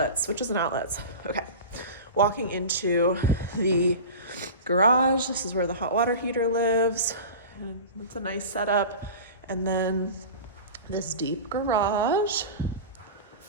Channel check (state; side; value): inverted; both; correlation -0.33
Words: Okay, walking into the garage. This is where the hot water heater lives. And it's a nice setup. And then this deep garage.